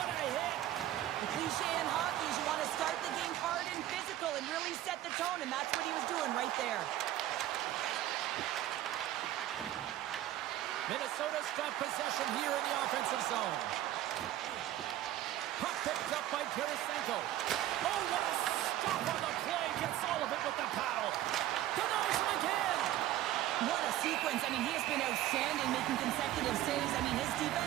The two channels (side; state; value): left; quieter; 13.5 dB